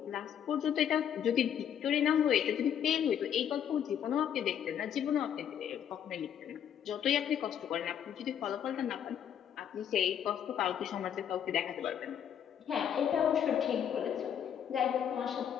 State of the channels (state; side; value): quieter; right; 9.2 dB